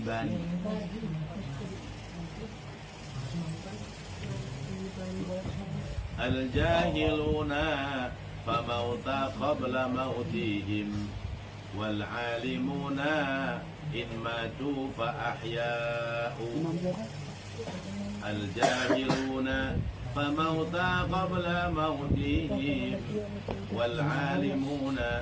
Al-jahiluna famauta qabla mautihim wal alimuna in matu fa ahya'u. Al-jahiluna famauta qabla mautihim wal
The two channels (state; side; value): identical; both; correlation 1.00